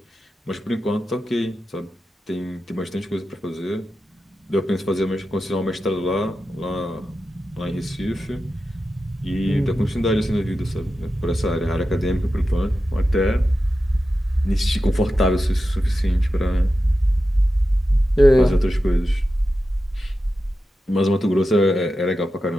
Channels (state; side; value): normal; both; correlation 0.91